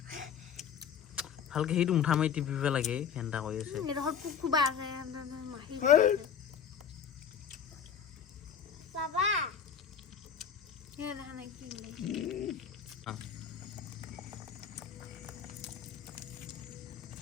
ভালকে সেইটো মুঠা মাৰি টিপিব লাগে ফেনটা কৰি আছে Baba.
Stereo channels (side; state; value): right; quieter; 7.5 dB